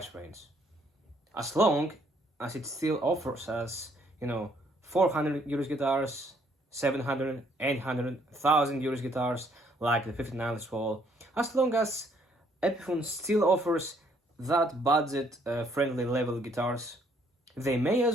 range, as long as it still offers us, 400 euros guitars, 700, 800, 1,000 euros guitars, like the 59 Les Paul. As long as Epiphone still offers that budget-friendly level guitars, they may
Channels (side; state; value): both; normal; correlation 0.66